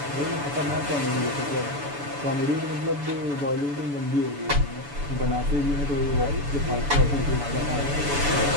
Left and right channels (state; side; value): late; left; 7.0 ms